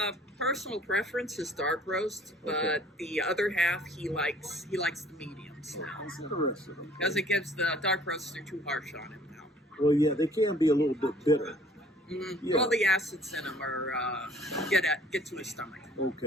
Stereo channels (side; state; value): both; normal; correlation 0.55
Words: Personal preference is dark roast, but the other half he likes the mediums now. That's interesting. Okay. Because it gives the dark roasts are too harsh on him now. Well, yeah, they can be a little bit bitter. Mm-hmm. Yeah. Well, the acids in them are get to his stomach.